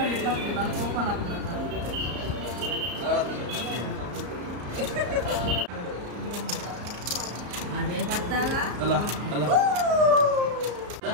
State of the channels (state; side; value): late; left; 34 ms